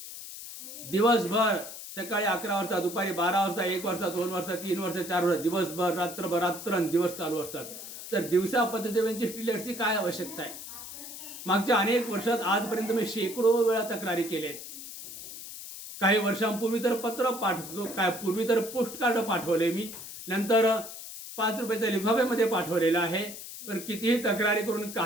दिवसभर सकाळी 11 वाजता, दुपारी 12 वाजता, 1 वाजता, 2 वाजता, 3 वाजता, 4 वाजता, दिवसभर रात्रंदिवस चालू असतात. तर दिवसा पथदिव्यांची स्ट्रीट लाईट्सची काय आवश्यकता आहे? मागच्या अनेक वर्षात आजपर्यंत मी शेकडो वेळा तक्रारी केल्या आहेत. काही वर्षांपूर्वी तर पत्र पाठवतो, पूर्वी तर पोस्ट कार्ड पाठवले मी, नंतर 5 रुपयाच्या लिफाफ्यामध्ये पाठवलेलं आहे. पण कितीही तक्रारी करून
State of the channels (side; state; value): left; noise; hiss, 11 dB below the sound